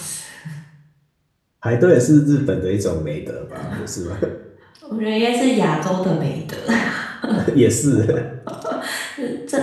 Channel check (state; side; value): identical; both; correlation 1.00